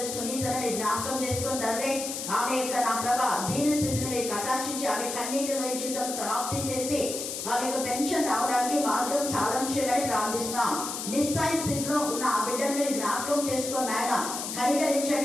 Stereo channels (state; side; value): noise; left; hiss, 5 dB below the sound